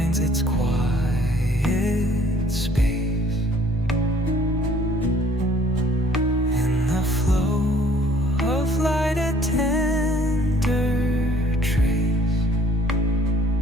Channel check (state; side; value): normal; both; correlation 0.58